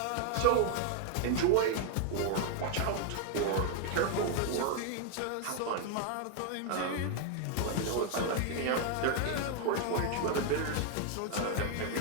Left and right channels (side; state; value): both; different; correlation 0.00